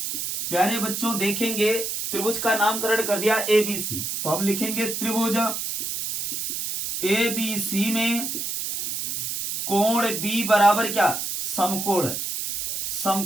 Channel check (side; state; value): right; noise; hiss, 3 dB below the sound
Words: प्यारे बच्चों, देखेंगे त्रिभुज का नामकरण कर दिया ABC, तो हम लिखेंगे त्रिभुज ABC में कोण B बराबर क्या? समकोण है,